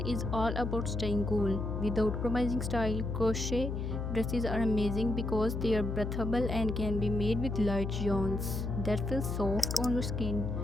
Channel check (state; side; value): noise; left; hum, 3 dB below the sound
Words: is all about staying cool without compromising style. Crochet dresses are amazing because they are breathable and can be made with light yarns that feel soft on your skin.